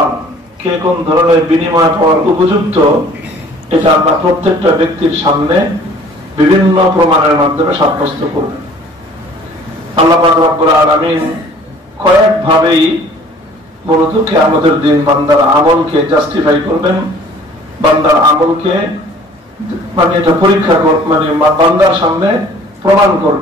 কে কোন ধরনের বিনিময় পাওয়ার উপযুক্ত, এটা আল্লাহ প্রত্যেকটা ব্যক্তির সামনে বিভিন্ন প্রমাণের মাধ্যমে সাব্যস্ত করবেন। আল্লাহ পাক রব্বুল আলামিন কয়েকভাবেই মূলত কিয়ামতের দিন বান্দার আমলকে জাস্টিফাই করবেন, বান্দার আমলকে মানে এটা পরীক্ষা মানে বান্দার সামনে প্রমাণ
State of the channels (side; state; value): both; normal; correlation 0.52